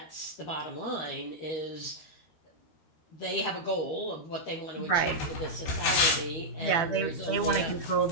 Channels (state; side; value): late; right; 13 ms